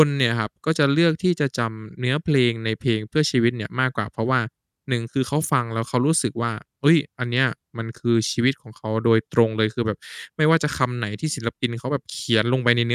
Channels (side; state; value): both; identical; correlation 1.00